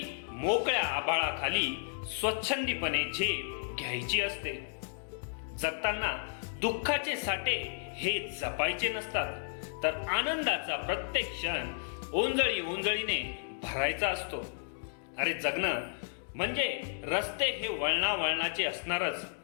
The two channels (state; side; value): silent; right; digital silence